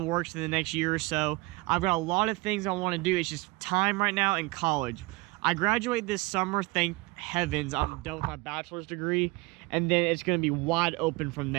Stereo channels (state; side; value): quieter; left; 23.5 dB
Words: works in the next year or so. I've got a lot of things I want to do. It's just time right now in college. I graduate this summer, thank heavens. I'm done with my bachelor's degree, and then it's going to be wide open from